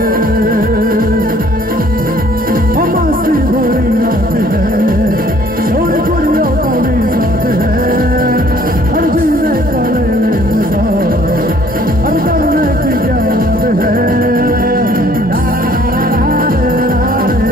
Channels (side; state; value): both; normal; correlation 0.58